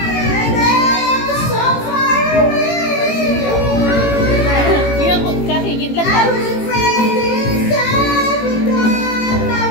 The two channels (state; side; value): late; right; 18 ms